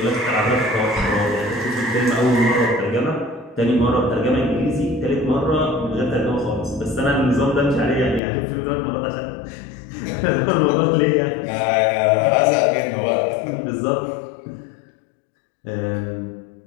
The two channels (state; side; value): drops out; right; at 8.2 s